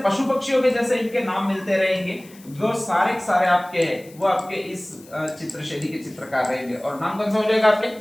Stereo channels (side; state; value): left; noise; hiss, 24 dB below the sound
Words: पशु पक्षियों के जैसे इनके नाम मिलते रहेंगे, वो सारे सारे आपके हैं वो आपके इस चित्रशैली के चित्रकार रहेंगे। और नाम कौन सा हो जाएगा आपके?